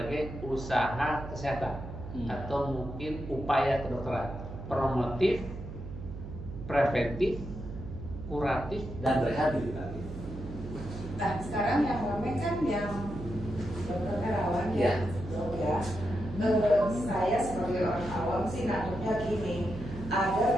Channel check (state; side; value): noise; right; hum, 10 dB below the sound